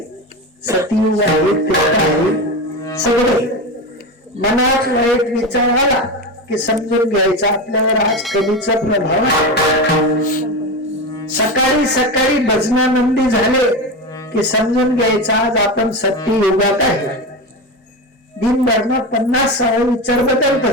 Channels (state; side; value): normal; both; correlation 0.20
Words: सतयुग आहे, त्रेता आहे. सगळे मनात वाईट विचार आला की समजून घ्यायचा आपल्यावर आज कलीचा प्रभाव आहे. सकाळी सकाळी भजनानंदी झाले की समजून घ्यायचा आज आपण सत्ययुगात आहे. दिनभर 50 विचार बदलत